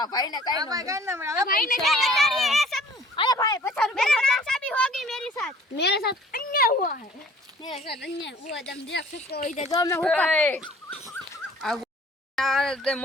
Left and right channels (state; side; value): normal; both; correlation 0.52